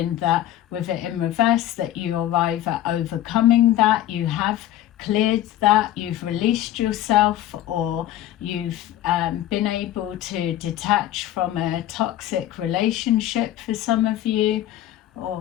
that with it in reverse, that you're either overcoming that, you have cleared that, you've released yourself, or you've been able to detach from a toxic relationship for some of you,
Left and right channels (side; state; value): right; quieter; 13.0 dB